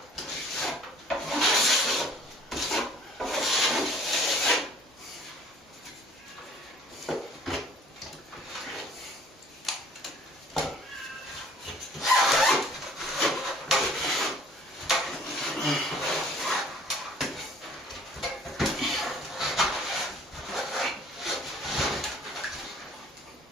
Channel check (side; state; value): both; normal; correlation 0.54